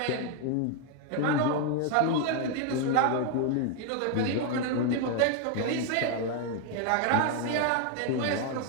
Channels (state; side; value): different; both; correlation 0.01